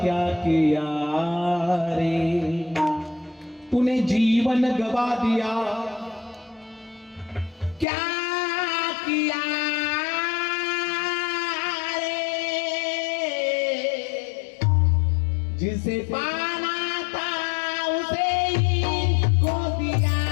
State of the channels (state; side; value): drops out; right; at 7.9 s